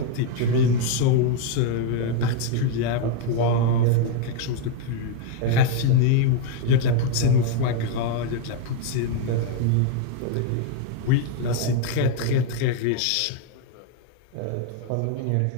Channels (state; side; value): different; both; correlation 0.01